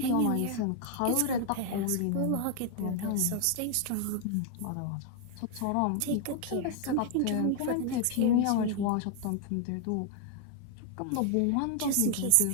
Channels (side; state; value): both; different; correlation 0.00